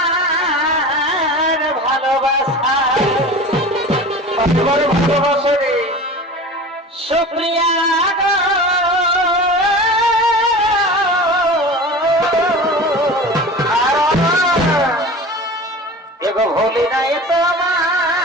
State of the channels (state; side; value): normal; both; correlation 0.35